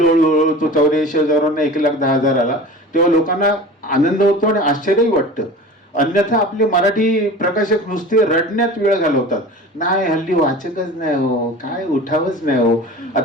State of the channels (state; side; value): normal; both; correlation 0.37